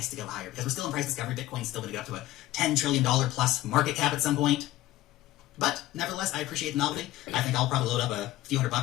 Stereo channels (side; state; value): right; quieter; 15.7 dB